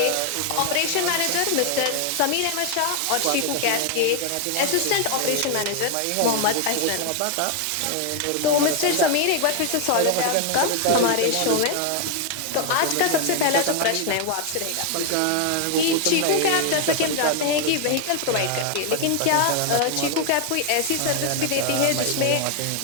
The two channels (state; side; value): different; both; correlation 0.00